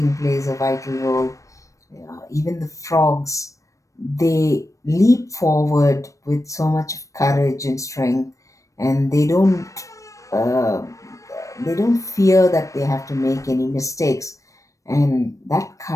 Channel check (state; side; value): late; right; 0.16 ms